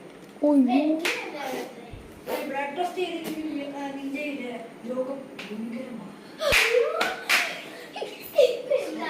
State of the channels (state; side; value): identical; both; correlation 1.00